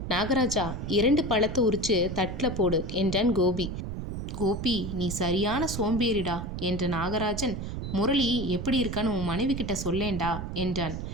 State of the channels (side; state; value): right; noise; rumble, 6 dB below the sound